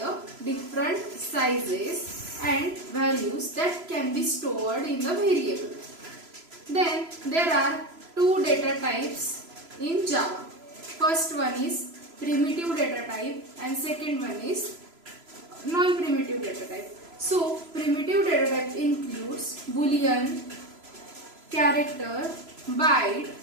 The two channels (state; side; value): late; left; 3.0 ms